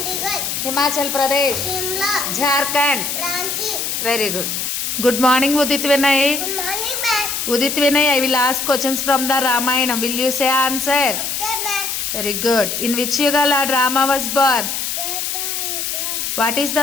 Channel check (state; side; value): noise; left; hiss, 2 dB below the sound